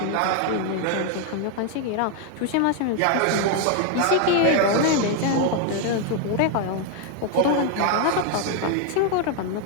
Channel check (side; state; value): both; different; correlation 0.01